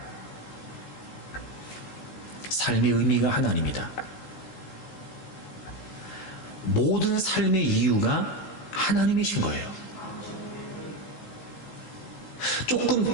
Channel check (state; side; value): late; right; 16 ms